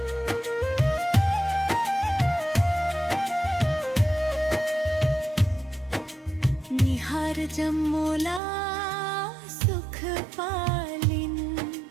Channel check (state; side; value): drops out; left; at 8.4 s